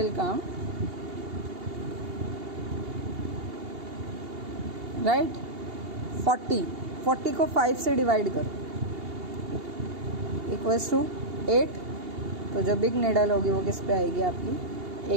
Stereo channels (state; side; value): late; left; 2.8 ms